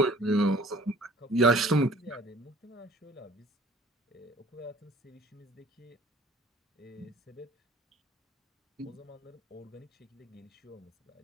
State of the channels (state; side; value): normal; both; correlation 0.52